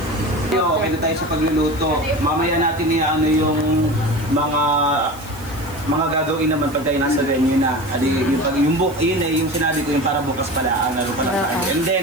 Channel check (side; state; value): right; noise; hiss, 21 dB below the sound